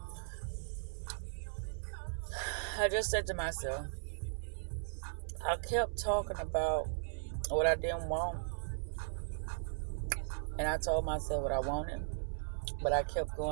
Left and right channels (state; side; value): silent; left; 53 dB below the other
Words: I just said to myself, I kept talking about what I didn't want. And I told myself what I wanted. But I kept